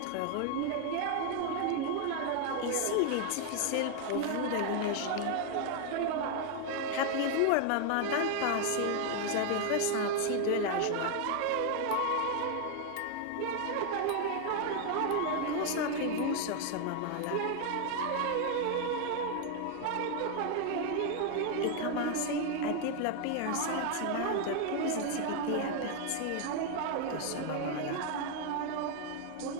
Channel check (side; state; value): both; different; correlation 0.00